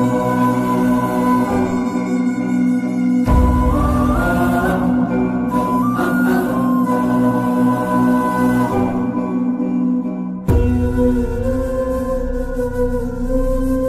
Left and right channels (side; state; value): both; identical; correlation 1.00